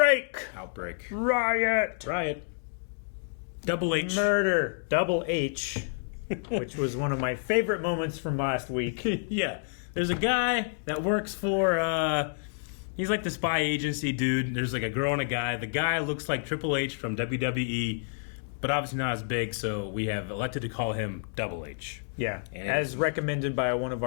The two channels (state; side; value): silent; right; digital silence